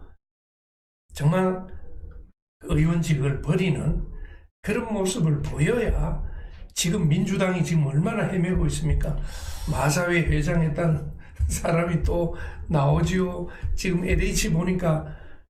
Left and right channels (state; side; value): identical; both; correlation 1.00